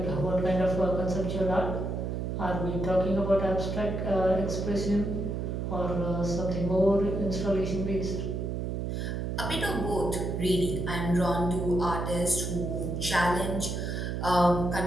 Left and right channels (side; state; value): right; noise; hum, 2 dB below the sound